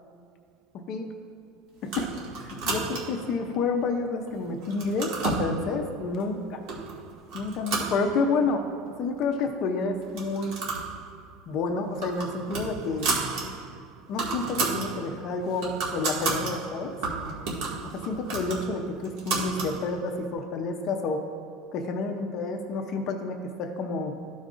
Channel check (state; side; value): normal; both; correlation 0.36